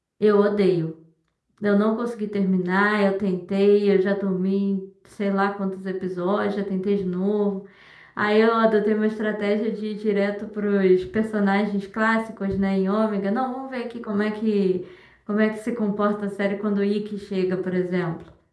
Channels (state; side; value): identical; both; correlation 1.00